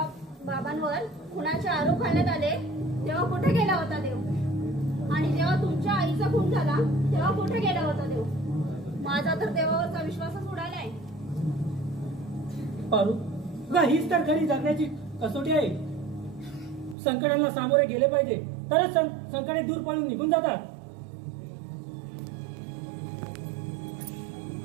बाबांवर खुनाचे आरोप घालण्यात आले तेव्हा कुठे गेला होता देव? आणि जेव्हा तुमच्या आईचा खून झाला तेव्हा कुठे गेला होता देव? माझा तर देवावरचा विश्वासच उडालाय. पारू गा हीच तर खरी जगण्याची कसोटी आहे. संकटांना सामोरे गेले पाहिजे तरच संकटे दूर पळून निघून जातात.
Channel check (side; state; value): left; drops out; at 16.9 s